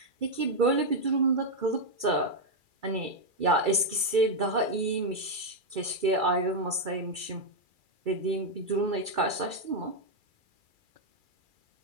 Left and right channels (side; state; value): left; late; 2.3 ms